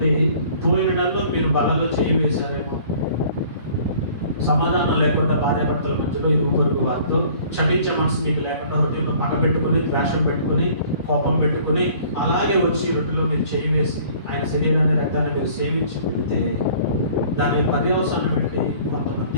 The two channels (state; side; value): inverted; both; correlation -0.52